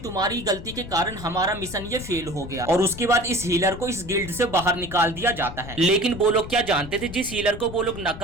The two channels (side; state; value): left; noise; rumble, 12 dB below the sound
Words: गलती के कारण हमारा मिशन ये फेल हो गया। और उसके बाद इस हीलर को इस गिल्ड से बाहर निकाल दिया जाता है। लेकिन वो लोग क्या जानते थे, जिस हीलर को वो लोग